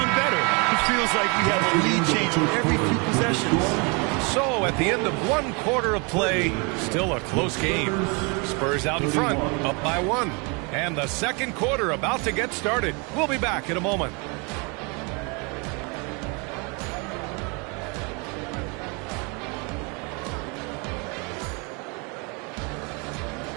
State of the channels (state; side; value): quieter; left; 31.6 dB